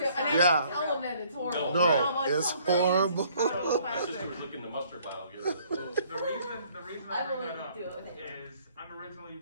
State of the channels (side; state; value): both; inverted; correlation -0.61